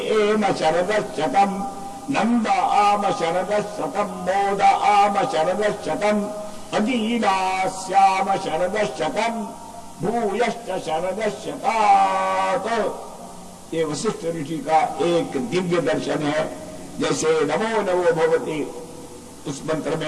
एव शरदशतं नंद आम शरदशतं मोद आम शरदशतं अदीनास्याम शरदशतं भूयश्च शरदशतात्। ये वशिष्ठ ऋषि का एक दिव्य दर्शन है। जैसे नमो नमो भगवती उस मंत्र में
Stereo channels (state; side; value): identical; both; correlation 1.00